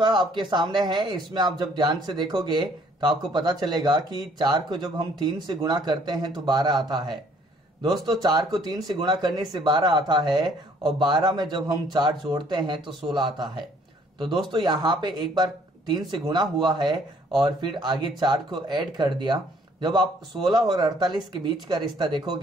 आपके सामने है। इसमें आप जब ध्यान से देखोगे तो आपको पता चलेगा कि 4 को जब हम 3 से गुणा करते हैं तो 12 आता है। दोस्तों 4 को 3 से गुणा करने से 12 आता है और 12 में जब हम 4 जोड़ते हैं तो 16 आता है। तो दोस्तों यहाँ पे एक बार 3 से गुणा हुआ है और फिर आगे 4 को ऐड कर दिया। जब आप 16 और 48 के बीच का रिश्ता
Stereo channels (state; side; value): normal; both; correlation 0.61